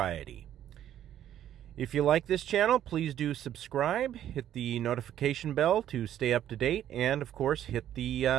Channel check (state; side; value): quieter; left; 11.1 dB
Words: If you like this channel, please do subscribe, hit the notification bell to stay up to date, and of course, hit